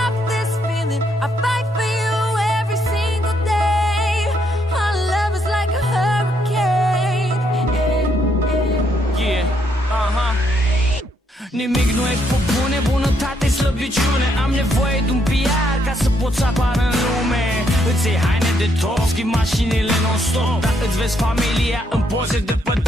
this feeling. I fight for you every single day. Our love is like a hurricane. Yeah, nimic nu e pe bune, bunătate, slăbiciune. Am nevoie de un PR ca să pot să apar în lume. Îți iei haine de top, schimbi mașinile non-stop, dar îți vezi familia în poze de pe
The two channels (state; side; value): normal; both; correlation 0.74